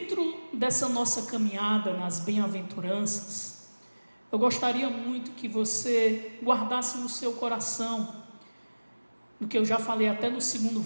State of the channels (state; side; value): inverted; both; correlation -1.00